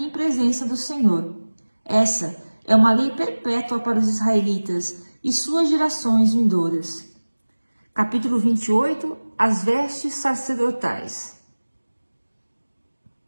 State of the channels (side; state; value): both; inverted; correlation -1.00